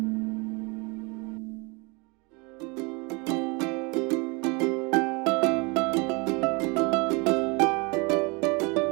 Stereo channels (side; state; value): left; quieter; 29.2 dB